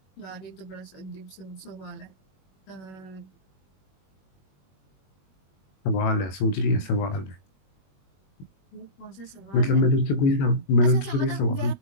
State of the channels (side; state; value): right; late; 21 ms